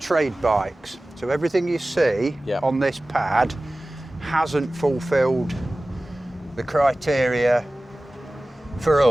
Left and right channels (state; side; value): normal; both; correlation 0.97